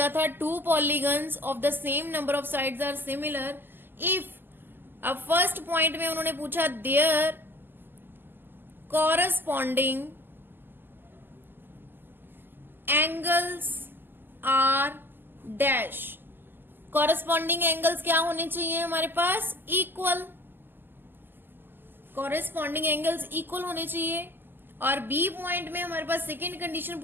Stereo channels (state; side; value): late; left; 0.095 ms